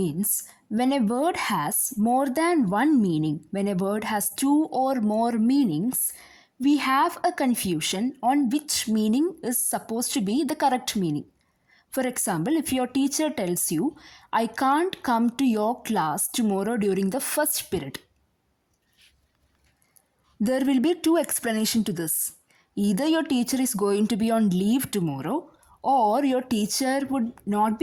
when a word has more than one meaning, when a word has two or more meanings, we have a confusion on which meaning is supposed to be the correct meaning. For example, if your teacher tells you, I can't come to your class tomorrow during the first period, there will be two explanations to this. Either your teacher is going to be on leave tomorrow, or your teacher would not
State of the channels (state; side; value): identical; both; correlation 1.00